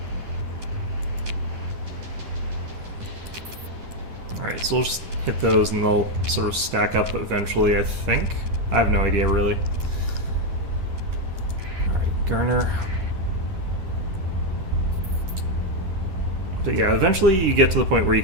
Alright, so we'll just hit those and they'll sort of stack up eventually, I think. I have no idea, really. Alright, Garner. But yeah, eventually you get to the point where you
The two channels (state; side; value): late; left; 11 ms